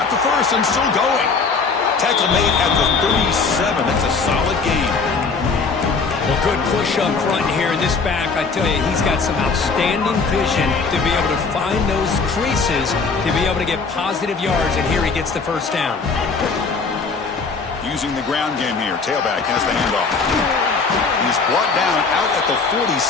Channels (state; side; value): quieter; right; 4.7 dB